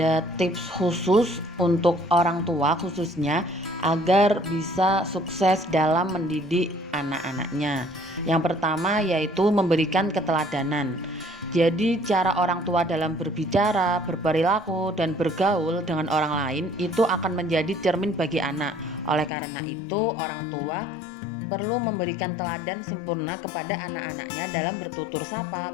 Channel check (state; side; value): drops out; right; at 19.3 s